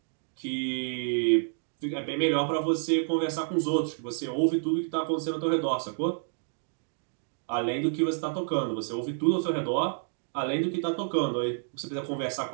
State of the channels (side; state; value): left; silent; digital silence